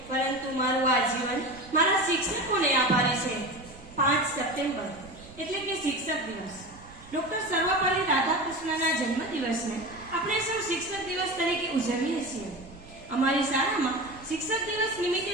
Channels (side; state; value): right; noise; rumble, 21 dB below the sound